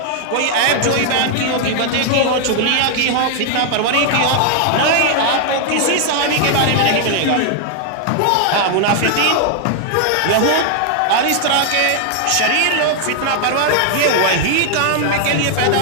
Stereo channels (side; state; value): both; different; correlation 0.00